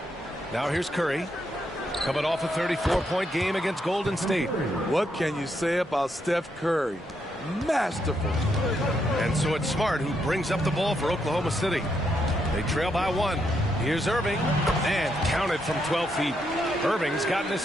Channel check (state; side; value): normal; both; correlation 0.78